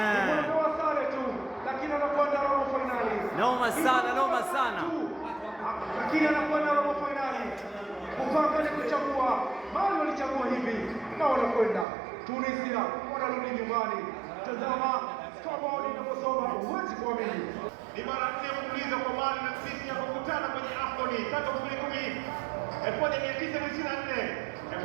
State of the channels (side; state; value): left; drops out; at 11.9 s